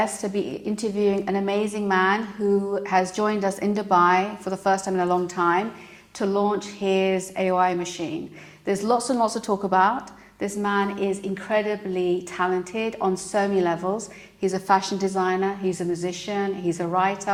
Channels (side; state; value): both; identical; correlation 1.00